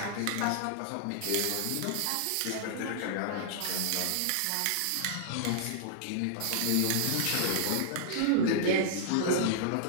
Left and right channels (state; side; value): different; both; correlation -0.01